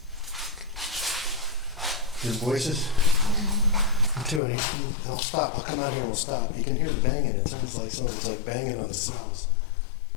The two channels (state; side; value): drops out; right; at 4.4 s